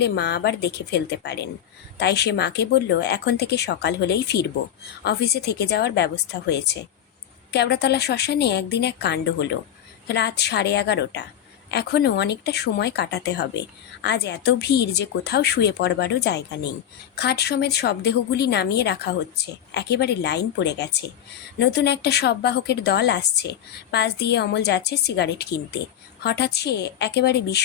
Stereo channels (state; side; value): quieter; right; 10.1 dB